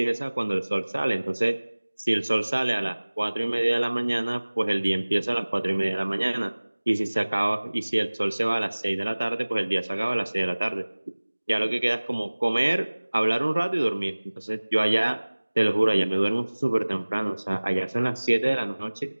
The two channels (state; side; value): inverted; both; correlation -1.00